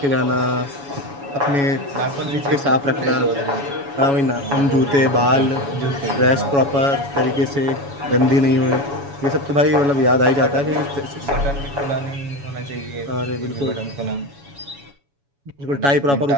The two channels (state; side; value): late; left; 7.1 ms